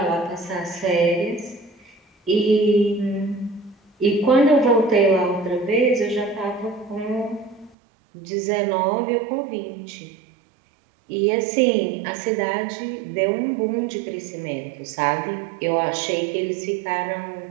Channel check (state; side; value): drops out; left; at 7.8 s